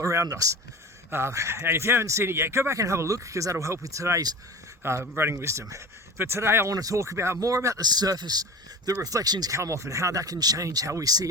around us. And if you haven't seen it yet, go back and have a look because that'll help with today's running wisdom. But today I want to talk more about the surface that reflections come off and how that can change how we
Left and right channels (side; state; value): both; normal; correlation 0.33